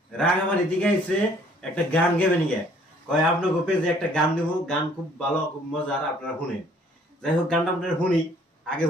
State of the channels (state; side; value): normal; both; correlation 0.59